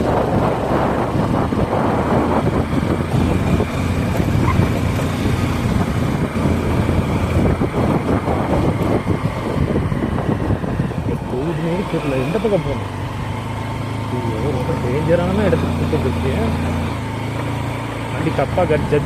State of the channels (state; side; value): identical; both; correlation 1.00